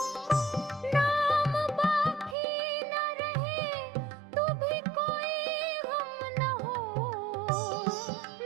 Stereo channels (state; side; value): drops out; left; at 2.4 s